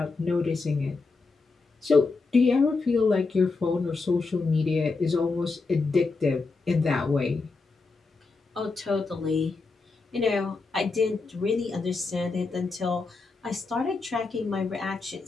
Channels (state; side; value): quieter; right; 4.0 dB